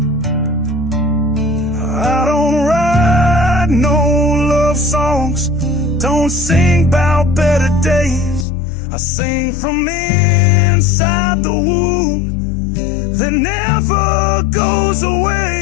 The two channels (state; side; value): drops out; right; at 8.5 s